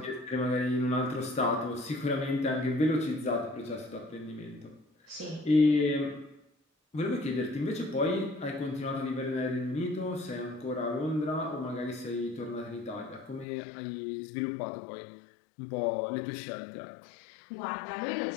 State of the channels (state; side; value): drops out; right; at 13.5 s